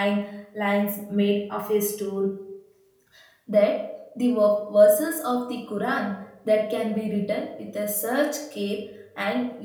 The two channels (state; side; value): identical; both; correlation 1.00